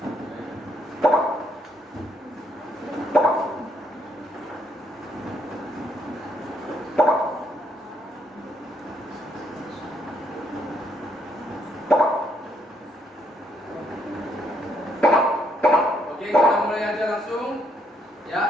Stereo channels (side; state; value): both; normal; correlation 0.72